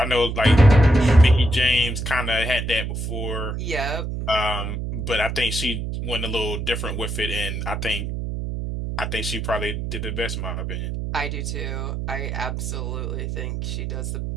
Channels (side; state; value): right; noise; hum, 4 dB below the sound